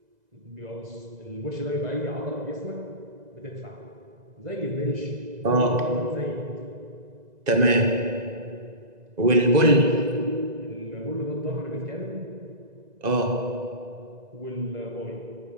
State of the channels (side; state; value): left; late; 2.0 ms